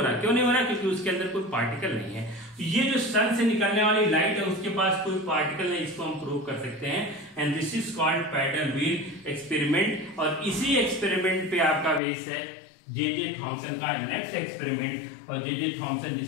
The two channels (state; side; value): drops out; right; at 12.0 s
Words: क्यों नहीं हो रहा? क्योंकि उसके अंदर कोई पार्टिकल नहीं है। ये जो सन से निकलने वाली लाइट है उसके पास कोई पार्टिकल नहीं, इसको हम प्रूव कर सकते हैं। And this is called paddle wheel experiment. और इसी एक्सपेरिमेंट पे आपका बेस है जे थॉमसन का नेक्स्ट एक्सपेरिमेंट। और जे थॉमसन